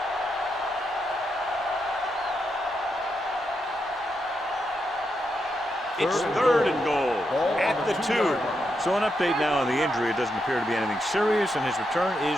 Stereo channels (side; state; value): both; normal; correlation 0.83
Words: It's 3rd and goal at the 2. So an update now on the injury. It doesn't appear to be anything serious, and his return